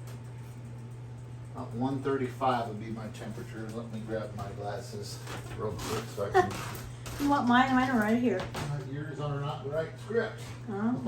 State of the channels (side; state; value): both; identical; correlation 1.00